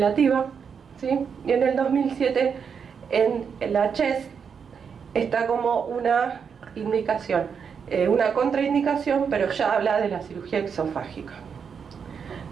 ¿sí? Y en el 2007, en la CHEST, está como una indicación, una contraindicación, pero ya habla de la cirugía exofágica.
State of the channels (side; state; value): left; quieter; 6.6 dB